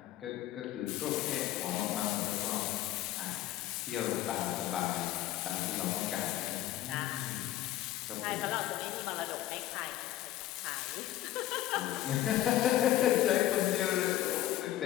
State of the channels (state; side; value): quieter; right; 13.9 dB